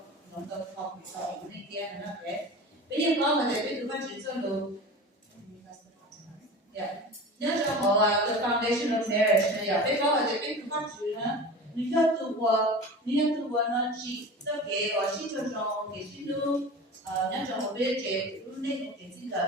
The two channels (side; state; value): both; normal; correlation 0.34